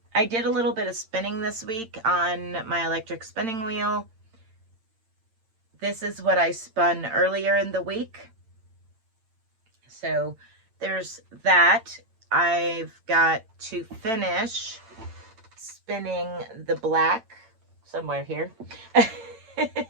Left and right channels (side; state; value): left; late; 8.9 ms